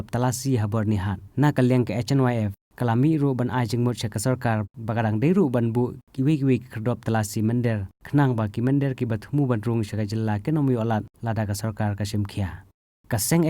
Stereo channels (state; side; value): identical; both; correlation 1.00